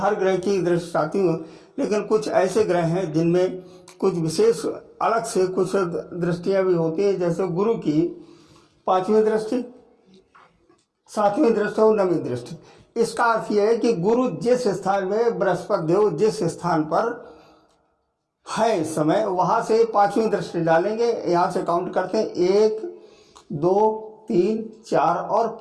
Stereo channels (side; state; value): both; identical; correlation 1.00